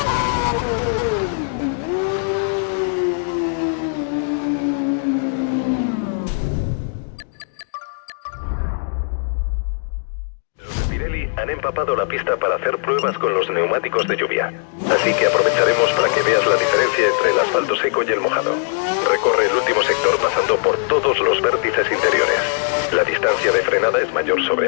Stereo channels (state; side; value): silent; right; digital silence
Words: Los de Pirelli han empapado la pista para hacer pruebas con los neumáticos de lluvia. Así que aprovecharemos para que veas la diferencia entre el asfalto seco y el mojado. Recorre el último sector pasando por todos los vértices interiores. La distancia de frenada es mayor